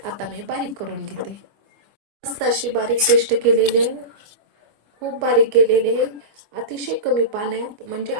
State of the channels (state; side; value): late; left; 25 ms